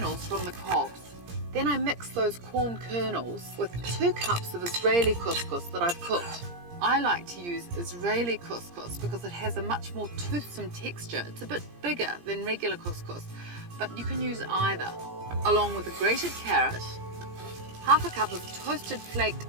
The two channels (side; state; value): left; late; 17 ms